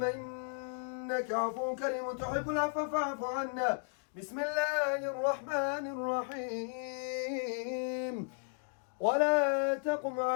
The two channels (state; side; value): silent; right; digital silence